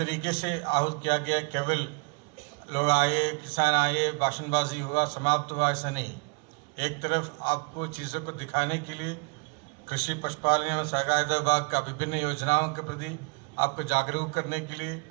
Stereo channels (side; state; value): left; quieter; 32.4 dB